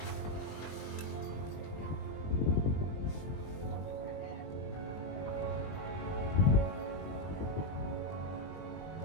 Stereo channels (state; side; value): late; right; 20 ms